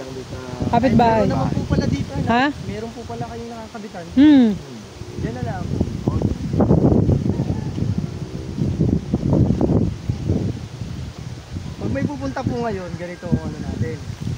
doon sa... Kapitbahay. Meron naman po pala dito. Ha? Meron po pala kayong nakakabitan. Yan na lang. Pag may pupunta po ngayon, ganito ang ano natin.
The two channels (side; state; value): both; identical; correlation 1.00